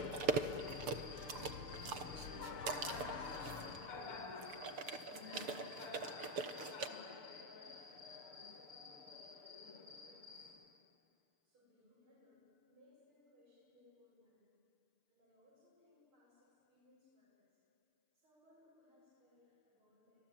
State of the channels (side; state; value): left; late; 6.8 ms